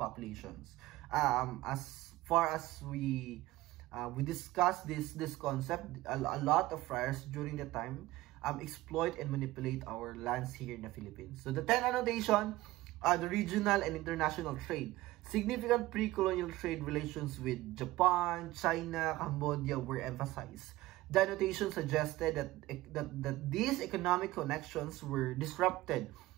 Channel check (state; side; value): quieter; left; 17.6 dB